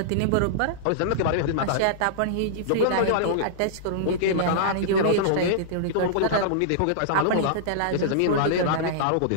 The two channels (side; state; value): both; different; correlation -0.02